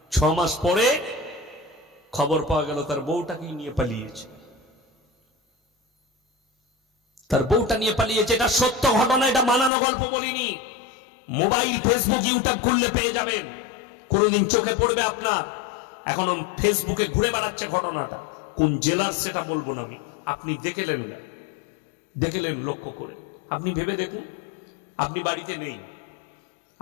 6 মাস পরে খবর পাওয়া গেল তার বউটাকে নিয়ে পালিয়েছে, তার বউটা নিয়ে পালিয়েছে। এটা সত্য ঘটনা, এটা বানানো গল্প বলিনি। মোবাইল, ফেসবুক, ইউটিউব খুললে পেয়ে যাবেন, কোনদিন চোখে পড়বে আপনার। এখনো ফেসবুকে ঘুরে বেড়াচ্ছে ঘটনাটা, কোন জেলার সেটা বলবো না আমি, আপনি দেখলেন না, দেখলেন লক্ষ্য করে, আপনি ভেবে দেখুন। আপনি বাড়িতে নেই,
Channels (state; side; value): drops out; right; at 9.7 s